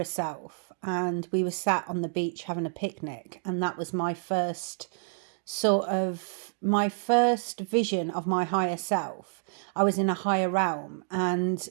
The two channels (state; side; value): silent; left; digital silence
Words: self, and we were sat on the beach having a picnic, and that was my first vision of my higher self. I was in a higher realm, and